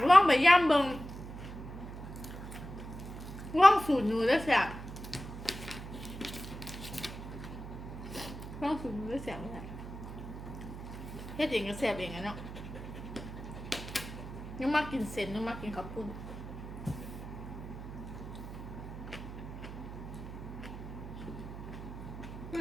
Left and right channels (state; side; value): noise; right; hum, 10 dB below the sound